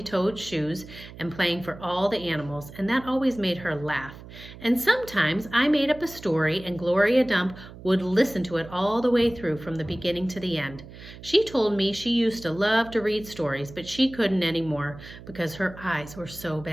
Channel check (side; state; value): right; noise; hum, 16 dB below the sound